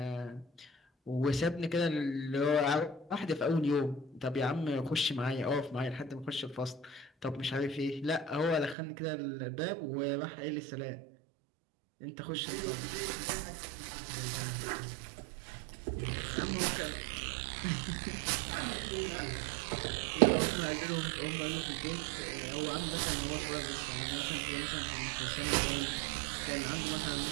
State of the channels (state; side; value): drops out; left; at 8.8 s